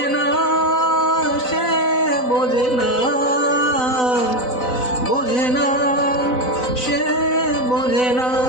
না সে, বোঝে না, বোঝে না সে, বোঝে না,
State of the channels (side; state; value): right; late; 4.0 ms